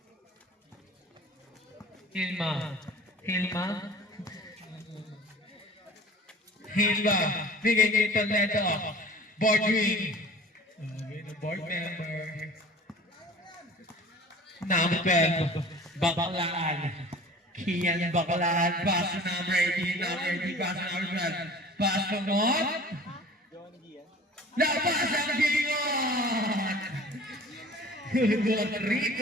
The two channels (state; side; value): normal; both; correlation 0.45